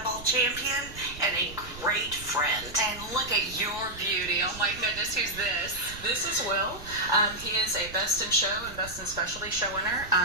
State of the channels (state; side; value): noise; right; rumble, 15 dB below the sound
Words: champion and a great friend. And look at your beauty. Oh my goodness, who's this? This is Will. He is a Best in Show and Best in Specialty show winner.